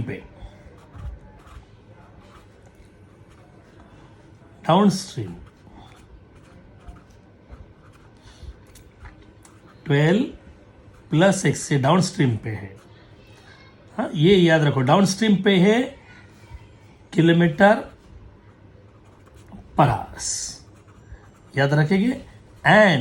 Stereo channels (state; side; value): identical; both; correlation 1.00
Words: पे, डाउन स्ट्रीम 12 प्लस एक्स से डाउन स्ट्रीम पे है। हाँ, ये याद रखो, डाउन स्ट्रीम पे है किलोमीटर पर आवर्स, याद रखेंगे।